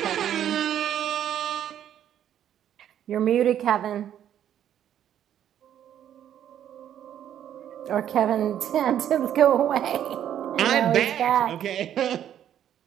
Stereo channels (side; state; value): left; quieter; 10.4 dB